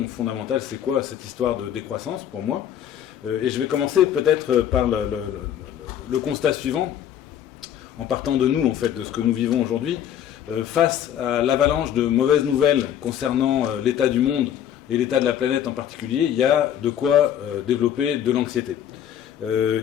fondamentale, c'est quoi cette histoire de décroissance pour moi? Et je vais commencer peut-être par le constat suivant, en partant de nous, en fait, de ce que nous vivons aujourd'hui. Face à l'avalanche de mauvaises nouvelles concernant l'état du monde et l'état de la planète en particulier, il y a de quoi développer de l'anxiété.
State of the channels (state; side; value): quieter; right; 10.1 dB